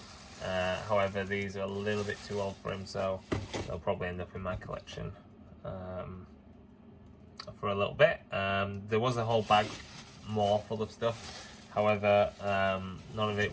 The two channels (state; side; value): identical; both; correlation 1.00